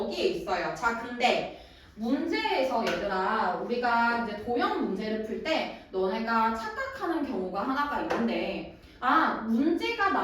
있어요. 자, 근데 문제에서 얘들아 우리가 이제 도형 문제를 풀 때 너네가 착각하는 경우가 하나가 있는데 문제가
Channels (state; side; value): identical; both; correlation 1.00